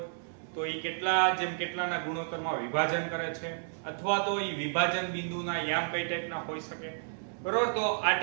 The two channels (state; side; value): silent; left; 57 dB below the other